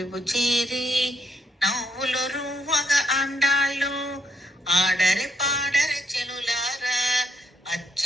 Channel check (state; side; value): normal; both; correlation 0.73